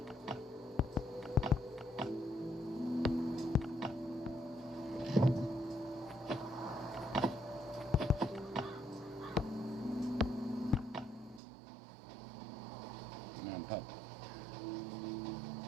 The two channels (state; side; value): drops out; left; at 11.4 s